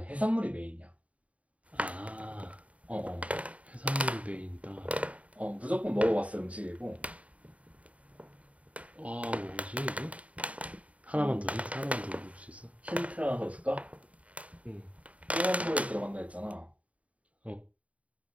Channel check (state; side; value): late; left; 0.066 ms